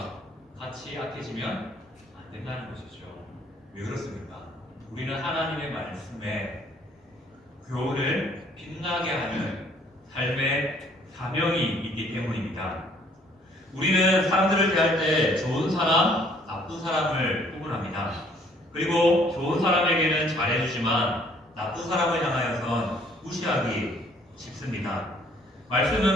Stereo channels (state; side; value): normal; both; correlation 0.61